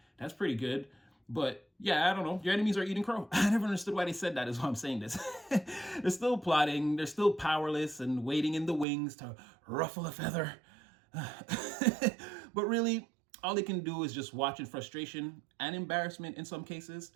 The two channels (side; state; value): left; drops out; at 8.8 s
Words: that's pretty good. But yeah, I don't know. Your enemies are eating crow. I never understood why they said that, is why I'm saying this. They're still plotting. They're still powerless and waiting in the wings to ruffle a feather. But really, all they can do is just watch in frustration and embarrassment in some cases.